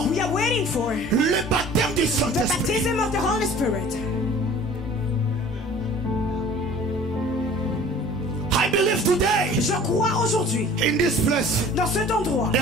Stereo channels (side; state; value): both; normal; correlation 0.47